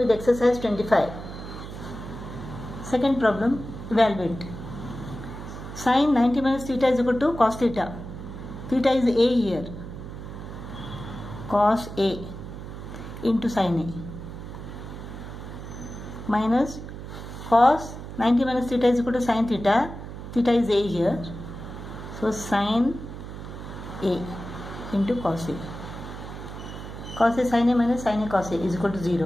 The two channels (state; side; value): noise; right; hum, 10 dB below the sound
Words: exercise 25. Second problem, evaluate. Sin 90 minus theta is equal to cos theta. Theta is A here. Cos A into sin A. Minus cos 90 minus theta is equal to sin theta. Theta is A here. So sin A into cos A. Cos A sin A minus sin A cos A is equal to